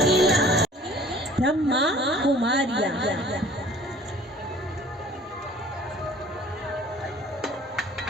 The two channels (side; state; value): both; normal; correlation 0.51